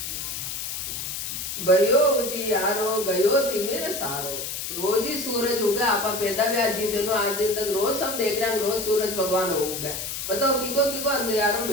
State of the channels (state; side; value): noise; left; hiss, 5 dB below the sound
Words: भयो उजियारो गयो तिमिर सारो, रोज ही सूरज उगा आपा पैदा भी आज दिनों आज दिन तक रोज सब देख रहे हैं रोज सूरज भगवान उगा बताओ किको अंधेरो